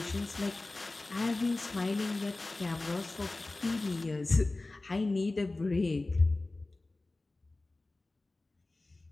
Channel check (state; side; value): quieter; right; 3.1 dB